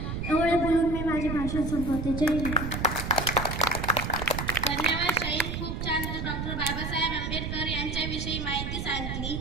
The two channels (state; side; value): noise; right; rumble, 4 dB below the sound